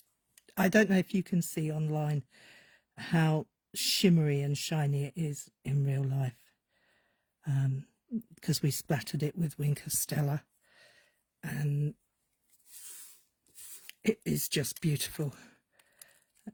I don't know if you can see online how shimmery and shiny it is in real life, because we splattered it with Wink of Stella, and it is just beautiful.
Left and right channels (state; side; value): identical; both; correlation 1.00